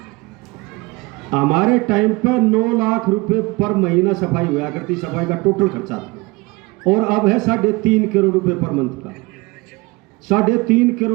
हमारे टाइम पर 9 लाख रुपए पर महीना सफाई हुआ करती, सफाई का टोटल खर्चा, और अब है 3.5 करोड़ रुपए पर मंथ का। 3.5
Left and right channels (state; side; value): quieter; left; 23.9 dB